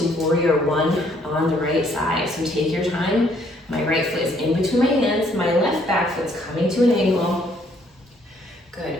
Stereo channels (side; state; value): both; normal; correlation 0.66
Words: warrior one on the right side. So take your time. My right foot is in between my hands. My left back foot's coming to an angle. Good,